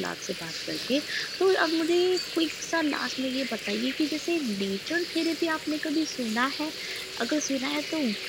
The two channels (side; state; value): both; identical; correlation 1.00